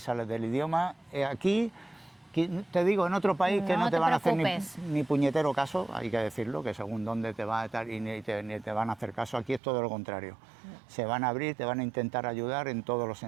es la del idioma. Aquí, te digo, en otro país que No no te te van a hacer preocupes. ni puñetero caso, hay que decirlo, que según dónde te va a estar y ni te van a hacer caso. Aquí es todo lo contrario. Se van a abrir, te van a intentar ayudar en todos los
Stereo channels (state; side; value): drops out; left; at 9.6 s